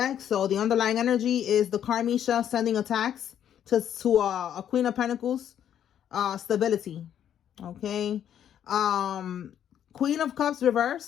So the underlying energy is the Karmisha sending attacks to a Queen of Pentacles stability. Okay. Queen of Cups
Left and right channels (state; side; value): quieter; right; 9.9 dB